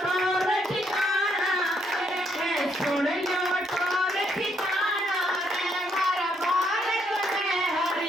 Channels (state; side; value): normal; both; correlation 0.73